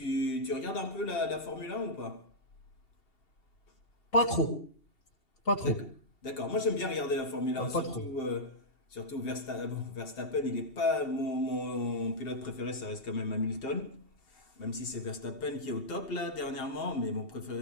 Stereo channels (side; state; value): right; late; 2.7 ms